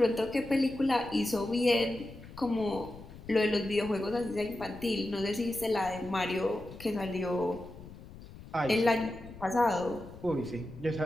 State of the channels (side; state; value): left; noise; rumble, 16 dB below the sound